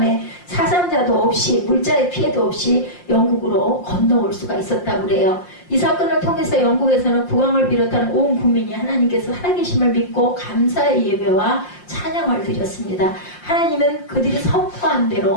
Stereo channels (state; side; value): late; right; 5.7 ms